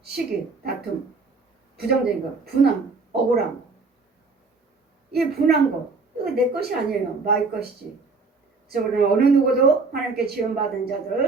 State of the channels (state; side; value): quieter; left; 4.1 dB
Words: 시기, 다툼, 부정적인 거, 분함, 억울함. 이 분한 거, 이거 내 것이 아니에요. 마귀 것이지. 그래서 우리는 어느 누구도 하나님께 지원받은